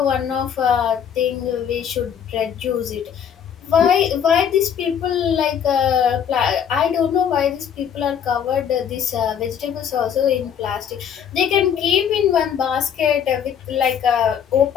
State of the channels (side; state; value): right; quieter; 8.3 dB